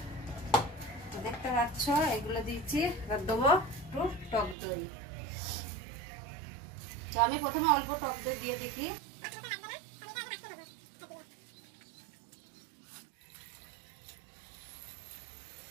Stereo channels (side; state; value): left; drops out; at 4.5 s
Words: তো দেখতে পাচ্ছ এগুলো দিয়েছি। দেবো একটু টক দই। তো আমি প্রথমে অল্প টক দই দিয়ে দেখি।